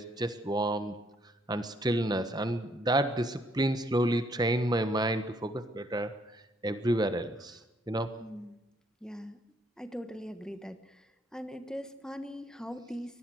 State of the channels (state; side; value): normal; both; correlation 0.69